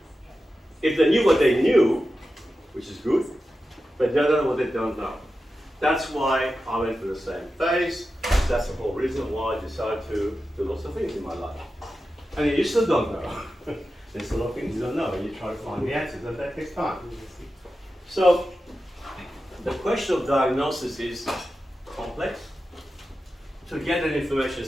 If they knew what they knew, which is good, but they don't know what they don't know. That's why I went through the same phase. That's the whole reason why I decided to do lots of things in my life. And you still don't know. There's a lot of things you don't know, and you try to find the answers, and that takes time. So, the question of diagnosis is complex. To get that information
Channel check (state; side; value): normal; both; correlation 0.92